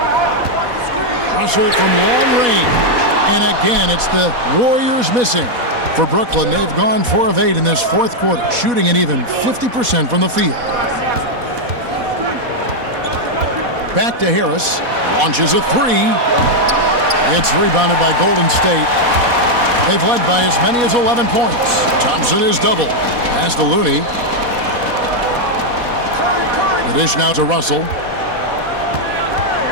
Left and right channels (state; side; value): late; left; 4.1 ms